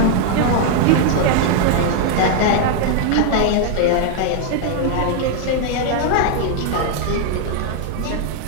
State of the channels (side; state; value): both; different; correlation 0.00